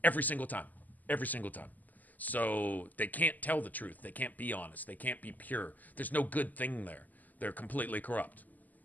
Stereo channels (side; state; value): right; late; 0.082 ms